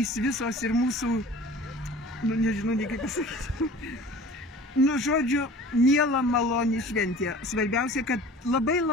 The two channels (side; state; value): both; normal; correlation 0.43